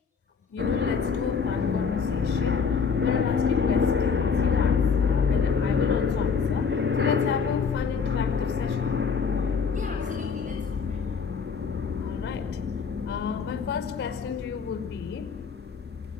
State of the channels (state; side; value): quieter; right; 5.8 dB